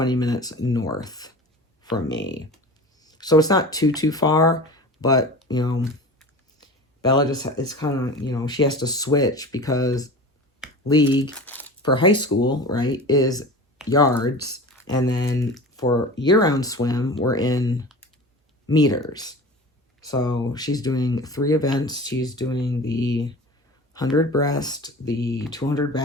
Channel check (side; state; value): both; normal; correlation 0.35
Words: minutes north from me. So it's not too far, but, you know, Bella just, it's kind of, you know, she has to switch because league for high school, right, is yards. And then for year-round swim, we're in meters. So she's doing 3 events. She's doing the 100 breast, the 200